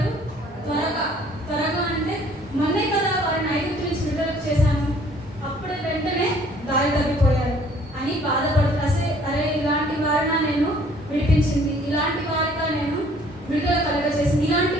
త్వరగా అంటే మొన్నే కదా వారిని ఐగుప్తు నుంచి విడుదల చేశాను, అప్పుడే వెంటనే దారి తప్పిపోయారు అని బాధపడుతూ, అరే ఇలాంటి వారిన నేను విడిపించింది, ఇలాంటి వారిగా నేను విడుదల కలగజేసింది, ఇలాంటి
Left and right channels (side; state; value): both; normal; correlation 0.58